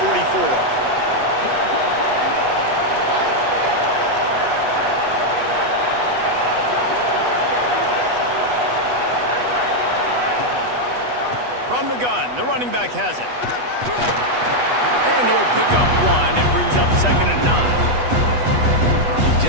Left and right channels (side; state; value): left; late; 8.2 ms